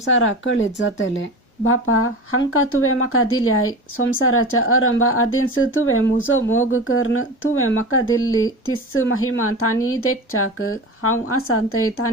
कळीत जातलें. बापा, हांकां तुवें म्हाका दिल्याय. संवसाराच्या आरंभा आदींच तुवें म्हजो मोग करून तुवें म्हाका दिल्ली तीच महिमा तांणी देखच्याक हांव आसां थंय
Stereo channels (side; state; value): both; normal; correlation 0.29